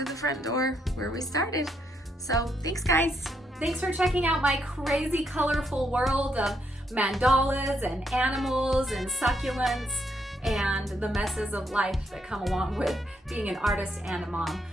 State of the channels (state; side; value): normal; both; correlation 0.76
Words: the front door where we started. So thanks, guys. Thanks for checking out my crazy colorful world of mandalas and animals and succulents and the messes of life that come along with being an artist and a mom.